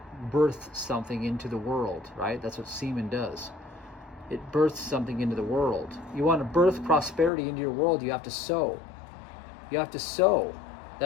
births something into the world, right? That's what semen does. It births something into the world. You want to birth prosperity into your world, you have to sow. You have to sow.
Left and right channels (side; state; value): right; drops out; at 7.3 s